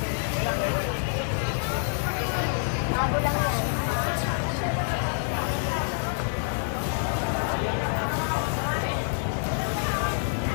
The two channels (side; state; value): right; silent; digital silence